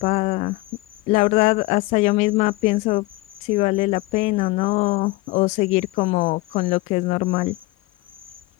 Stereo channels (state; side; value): quieter; right; 20.7 dB